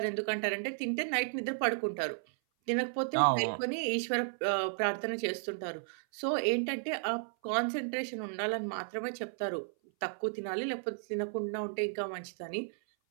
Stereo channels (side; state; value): left; silent; 55 dB below the other